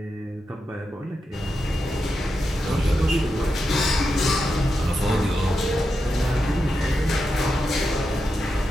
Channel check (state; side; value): normal; both; correlation 0.87